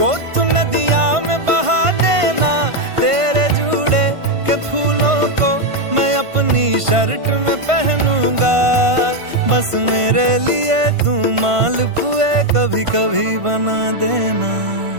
तू नदिया में बहा देना तेरे जूड़े के फूलों को मैं अपनी शर्ट में पहनूंगा बस मेरे लिए तू मालपुए कभी कभी बना देना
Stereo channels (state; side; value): late; left; 1.5 ms